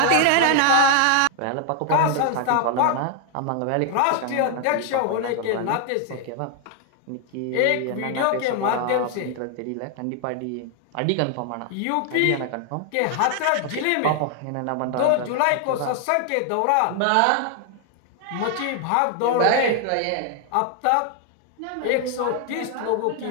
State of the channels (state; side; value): different; both; correlation 0.00